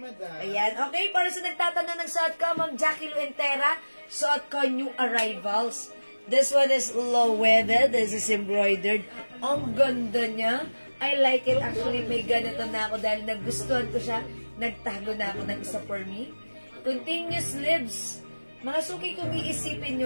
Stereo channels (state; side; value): inverted; both; correlation -1.00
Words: Ayan, okay, para sa nagtatanong ng suot ko, Ma'am Jackie Luentera, suot ko new arrivals. This one is low-weathered. This is embroidered. Ang ganda niya. I like it. Actually, may ganito na ako dahil nagustuhan ko siya. Nagtago na ako ng isa for me. Continuous sleeves. Mga Suki, kung iisipin